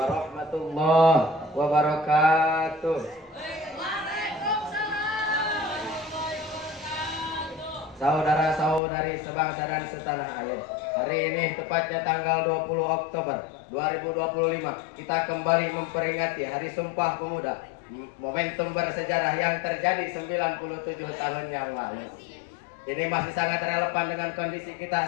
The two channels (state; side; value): drops out; right; at 8.8 s